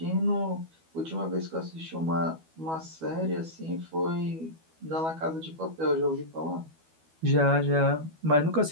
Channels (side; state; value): left; late; 12 ms